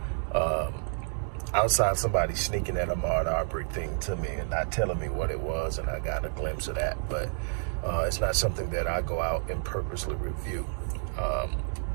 outside somebody sneaking that Ahmaud Arbery thing to me and not telling me what it was, and I got a glimpse of that, but it's not something that I go out and purposely review.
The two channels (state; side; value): silent; left; digital silence